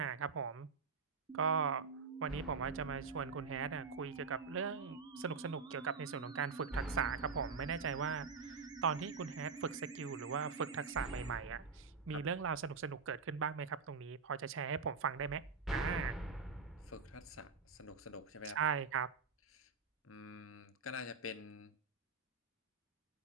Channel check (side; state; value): left; quieter; 5.1 dB